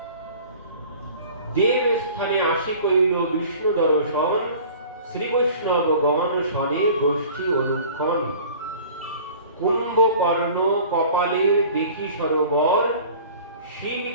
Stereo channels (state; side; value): inverted; both; correlation -0.45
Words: দেব স্থানে আসি কইল বিষ্ণু দর্শন, শ্রী বৈষ্ণবগণ শনে গোষ্ঠী অনুক্ষণ। কুম্ভকর্ণ কপালের দেখি সরোবর, শিব